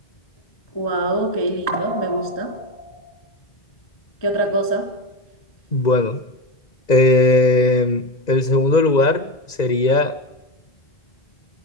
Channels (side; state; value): right; late; 2.0 ms